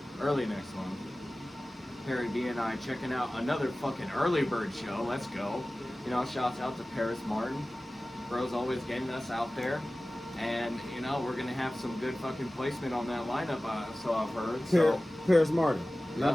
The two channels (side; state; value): both; normal; correlation 0.97